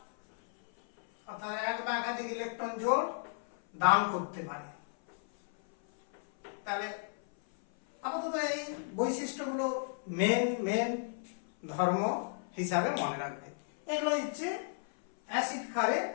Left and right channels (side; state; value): right; silent; 55 dB below the other